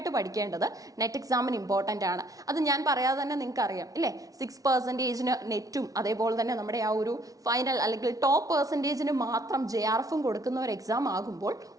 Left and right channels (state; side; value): late; left; 0.17 ms